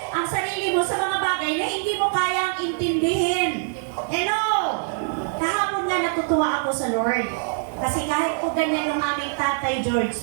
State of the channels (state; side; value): silent; left; 63 dB below the other